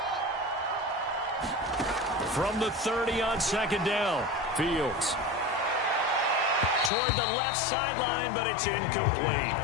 From the 30 on 2nd down, Fields. Toward the left sideline, but it's incomplete.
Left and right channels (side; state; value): right; drops out; at 6.9 s